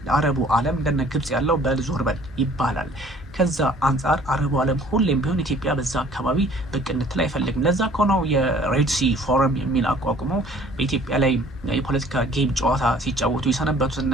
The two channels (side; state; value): both; normal; correlation 0.54